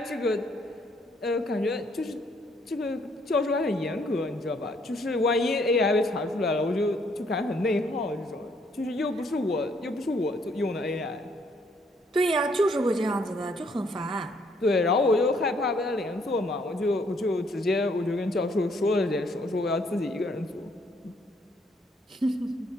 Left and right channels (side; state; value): both; normal; correlation 0.68